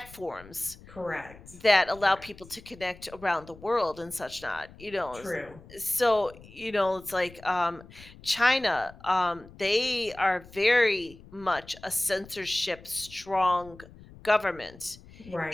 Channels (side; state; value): left; noise; rumble, 20 dB below the sound